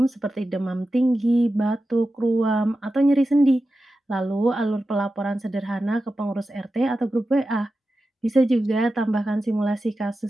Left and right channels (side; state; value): both; normal; correlation 0.92